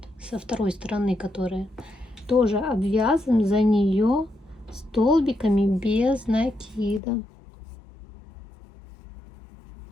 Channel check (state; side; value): drops out; right; at 7.0 s